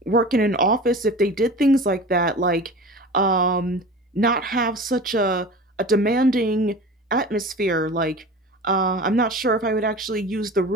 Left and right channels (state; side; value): normal; both; correlation 0.35